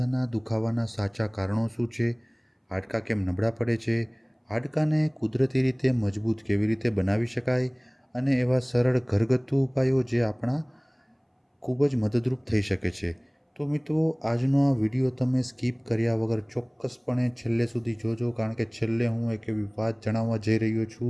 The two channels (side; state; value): both; identical; correlation 1.00